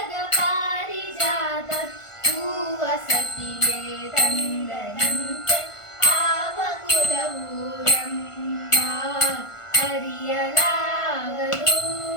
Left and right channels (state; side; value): late; right; 1.5 ms